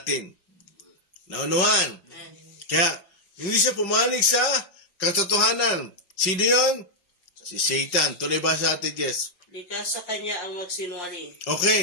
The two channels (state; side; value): late; right; 5.4 ms